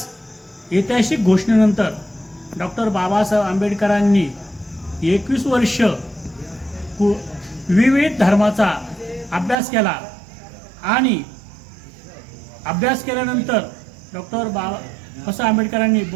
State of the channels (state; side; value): drops out; left; at 9.6 s